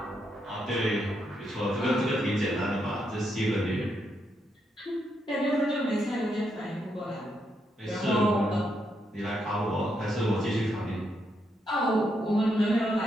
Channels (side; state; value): both; normal; correlation 0.79